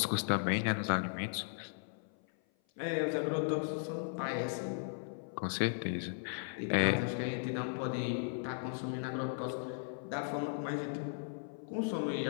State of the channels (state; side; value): silent; right; 53 dB below the other